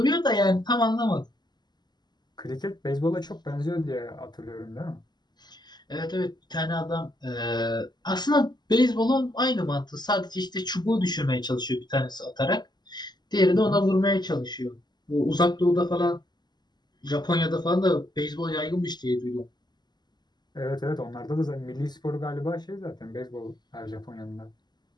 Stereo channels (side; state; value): right; late; 0.21 ms